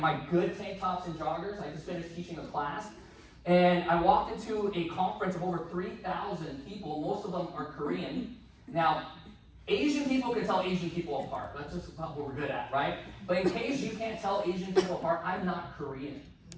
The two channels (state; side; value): identical; both; correlation 1.00